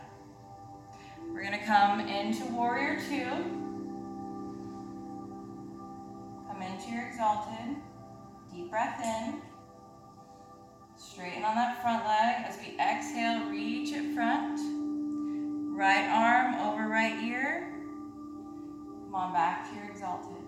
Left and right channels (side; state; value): both; identical; correlation 1.00